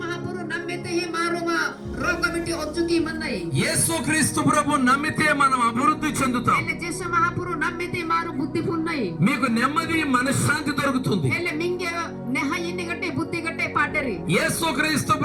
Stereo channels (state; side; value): identical; both; correlation 1.00